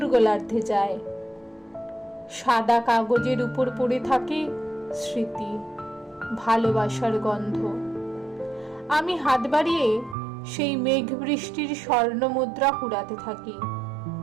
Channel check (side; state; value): left; drops out; at 10.2 s